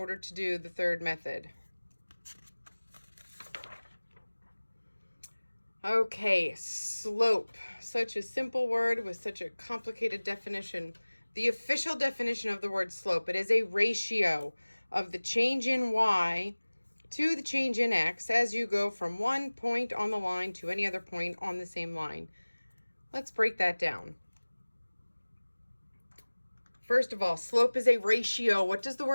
to do the third method. Okay, slope. Such a simple word with such a complicated definition. The official definition of the word slope, it is a ratio of the change in y to the change in x as you go from one point on the line to any other point on the same line. Let's break that down. First of all, slope is a ratio. What does the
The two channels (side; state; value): both; inverted; correlation -1.00